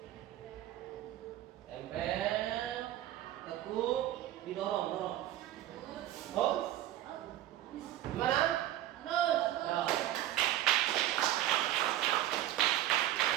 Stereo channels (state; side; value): quieter; left; 13.7 dB